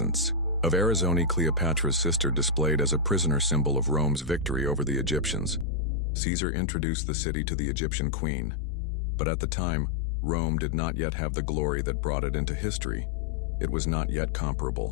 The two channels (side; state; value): right; drops out; at 5.7 s